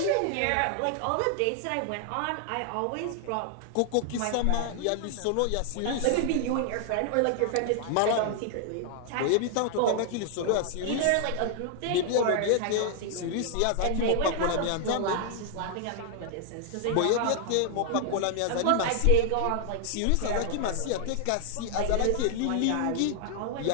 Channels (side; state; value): both; different; correlation 0.00